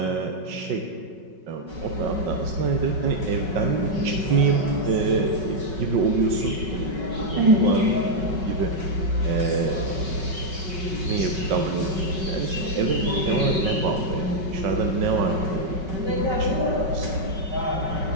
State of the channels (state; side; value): late; left; 5.3 ms